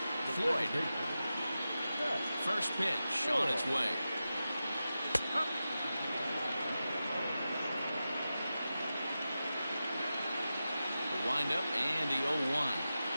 Floyd. First pitch on its way. The windup and the 0-1.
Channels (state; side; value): inverted; both; correlation -0.92